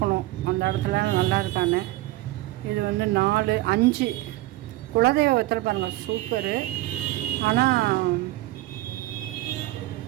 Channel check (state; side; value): quieter; left; 18.0 dB